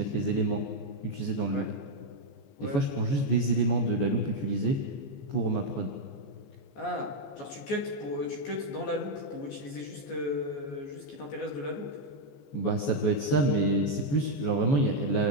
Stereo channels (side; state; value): right; late; 14 ms